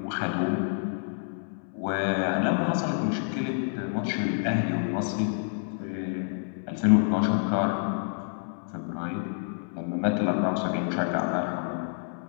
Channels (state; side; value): silent; right; 59 dB below the other